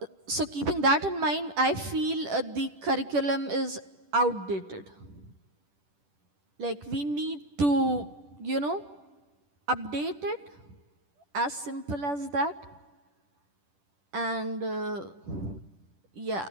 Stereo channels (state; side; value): late; left; 10 ms